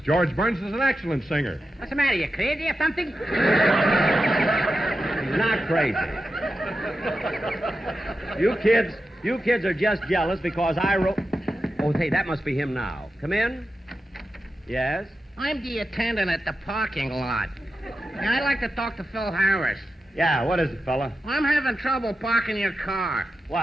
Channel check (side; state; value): both; normal; correlation 0.91